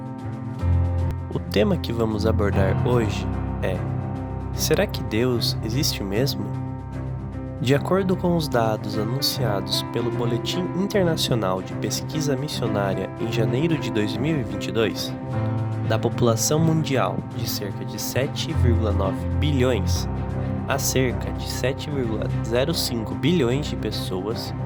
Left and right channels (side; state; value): both; identical; correlation 1.00